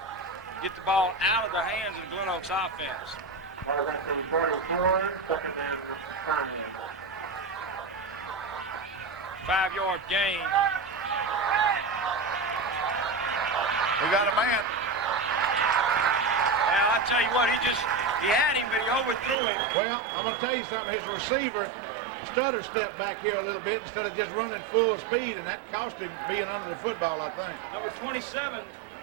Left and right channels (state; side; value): drops out; left; at 19.4 s